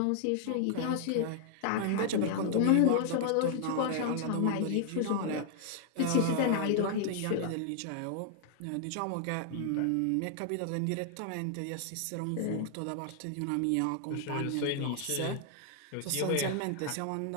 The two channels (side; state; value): both; different; correlation 0.00